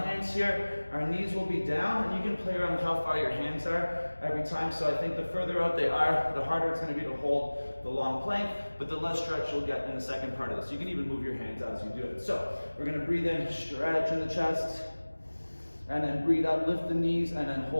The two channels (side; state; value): both; inverted; correlation -1.00